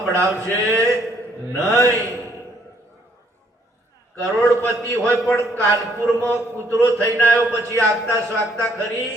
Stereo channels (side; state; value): both; normal; correlation 0.67